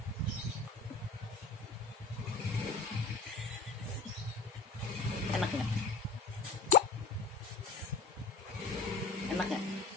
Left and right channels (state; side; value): quieter; right; 4.1 dB